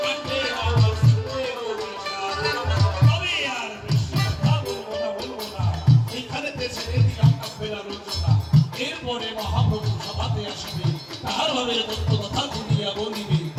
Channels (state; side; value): identical; both; correlation 1.00